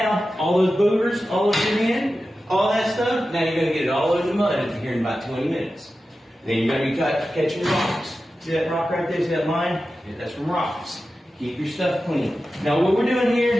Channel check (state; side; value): normal; both; correlation 0.93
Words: all those boogers, all over your hand, all that stuff, now you're going to get it all over the mud here in about 20 minutes. Then you're going to be catching your rocks. See that rock right there? See that line? Yeah, that's from rocks. Keep your stuff clean. Now what we're doing here